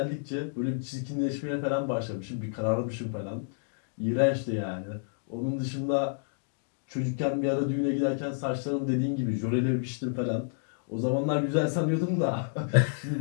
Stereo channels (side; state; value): right; silent; digital silence